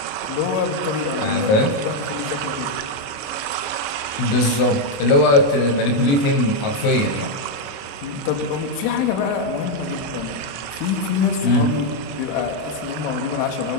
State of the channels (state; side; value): late; right; 28 ms